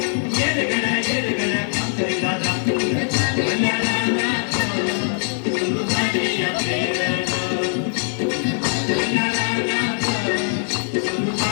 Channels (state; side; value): silent; right; digital silence